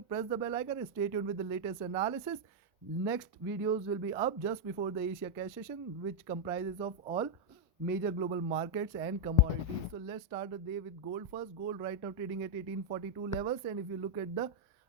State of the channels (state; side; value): normal; both; correlation -0.02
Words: press the bell icon and stay tuned with the latest analysis. Next videos will be up just before the Asia cash session, which comprises of all major global markets and commodities. So let's start the day with gold first. Gold right now trading at 1842 levels, and if you look at the,